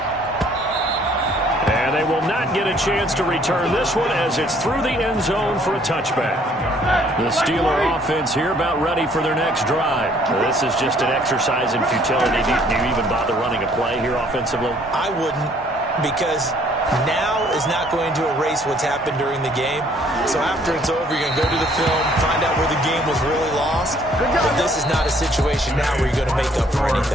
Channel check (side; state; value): both; normal; correlation 0.61